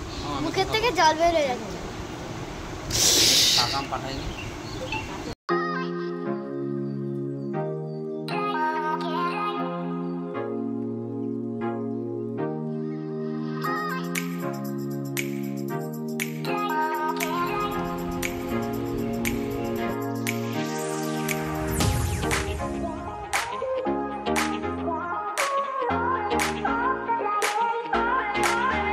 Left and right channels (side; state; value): both; identical; correlation 1.00